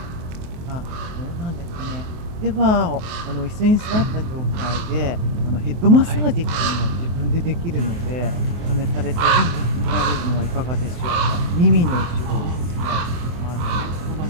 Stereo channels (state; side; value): late; left; 24 ms